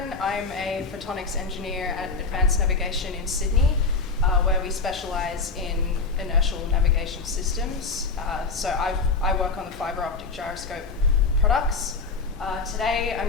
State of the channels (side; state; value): right; quieter; 4.2 dB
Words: I'm a Photonics Engineer at Advanced Navigation in Sydney, where we specialise in inertial navigation systems. So I work on the fibre optic gyroscope products. Today